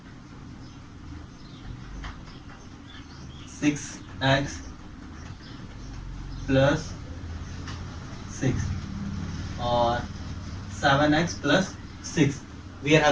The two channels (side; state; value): both; identical; correlation 1.00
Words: 6x plus 6 or 7x plus 6, we are